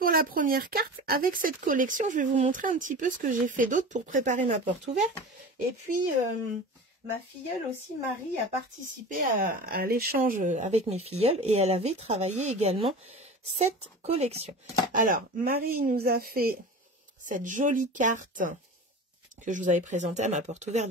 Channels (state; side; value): normal; both; correlation 0.34